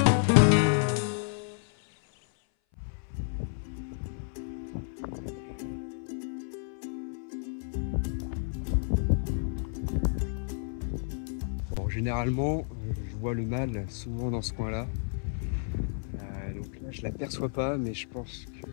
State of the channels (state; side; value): silent; right; 57 dB below the other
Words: Généralement, je vois le mâle souvent dans ce coin-là. Donc là, je ne l'aperçois pas, mais je pense que